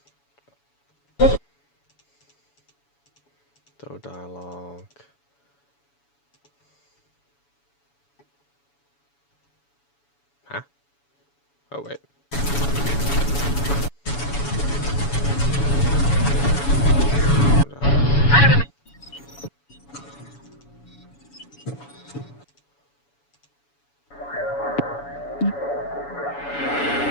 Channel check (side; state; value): right; late; 7.1 ms